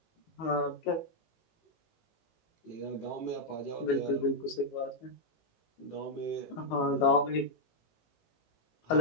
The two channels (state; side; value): late; right; 18 ms